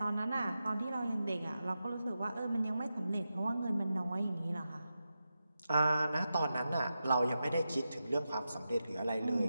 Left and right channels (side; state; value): both; inverted; correlation -0.90